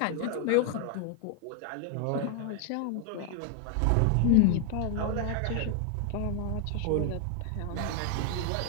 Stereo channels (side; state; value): both; different; correlation 0.00